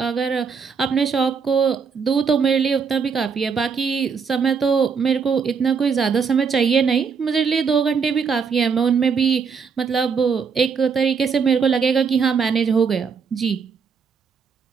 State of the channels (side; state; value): left; quieter; 5.8 dB